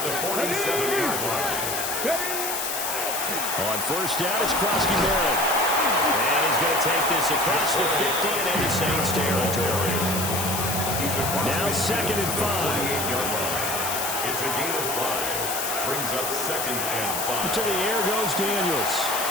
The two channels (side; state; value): left; noise; hiss, 2 dB below the sound